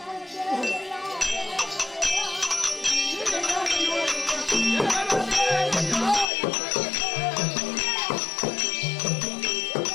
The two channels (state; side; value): drops out; right; at 6.2 s